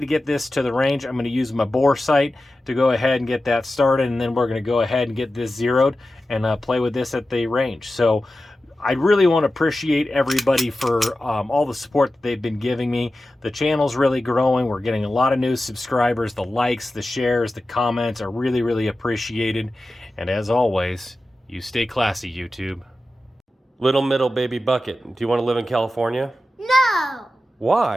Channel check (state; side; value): normal; both; correlation 0.93